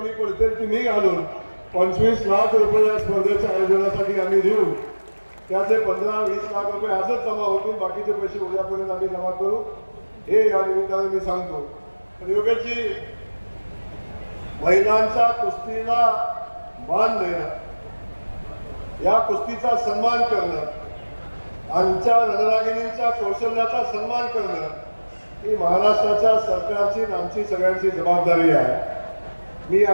पडतील ती मी घालून 25 लाख रुपये या स्पर्धेच्या आयोजनासाठी आम्ही देऊ. त्याचे 15-20 लाख रुपये आजच जमा होतील, बाकीचे पैसे उद्यापर्यंत आम्ही जमा करू हे या निमित्तानं मी सांगतो. तर योगेशजी, महिलांच्या कुस्तीला मान देणं, या कुस्तीचा सन्मान करणं, आमच्या रणरागिणींच्या कौशल्याचा सन्मान करणं ही महाराष्ट्राच्या सरकारची आणि आमची सगळ्यांची जबाबदारी आहे. मी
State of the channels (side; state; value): both; inverted; correlation -1.00